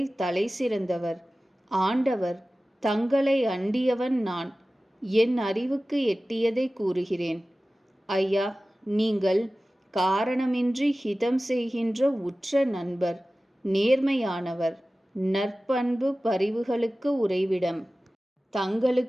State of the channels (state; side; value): normal; both; correlation 0.96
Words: தலை சிறந்தவர். ஆண்டவர் தங்களை அண்டியவன் நான். என் அறிவுக்கு எட்டியதை கூறுகிறேன். ஐயா, நீங்கள் காரணமின்றி ஹிதம் செய்கின்ற உற்ற நண்பர், நேர்மையானவர், நற்பண்பு பரிவுகளுக்கு உறைவிடம்.